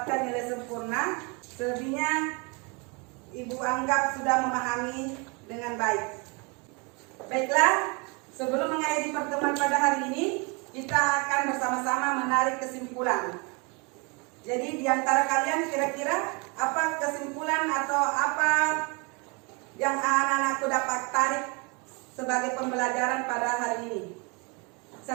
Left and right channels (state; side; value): quieter; left; 30.8 dB